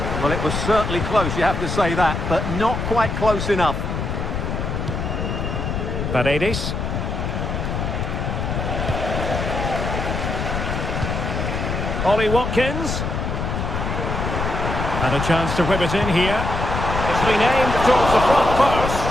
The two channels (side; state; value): left; noise; rumble, 2 dB below the sound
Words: Well, it was certainly close, you have to say that, but not quite close enough. Paredes. Ollie Watkins. And a chance to whip it in here. It's been aimed towards the front post.